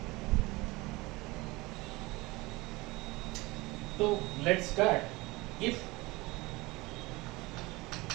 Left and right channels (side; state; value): left; quieter; 22.3 dB